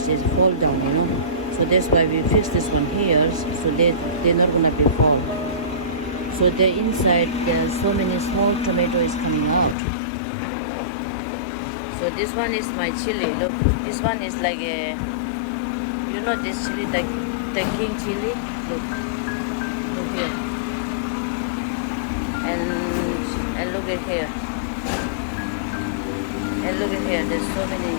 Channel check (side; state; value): right; drops out; at 9.8 s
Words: is fall down, so that's why we fix this one here, so they're not gonna be fall. So the inside there's so many small tomatoes coming out. So this one is my chili. Look, this one is like a, this chili, the king chili. Look here, and look at here, and look at here. There's so many